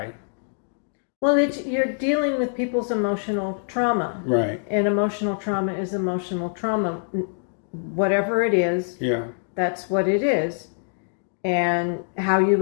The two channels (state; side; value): silent; right; digital silence